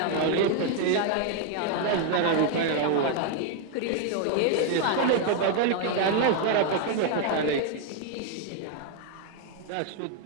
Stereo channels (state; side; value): different; both; correlation 0.01